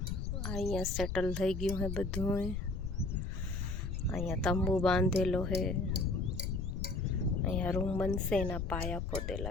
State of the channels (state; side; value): noise; left; rumble, 4 dB below the sound